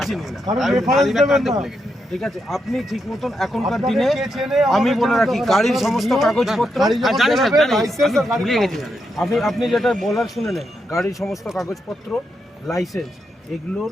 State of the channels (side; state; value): both; normal; correlation 0.83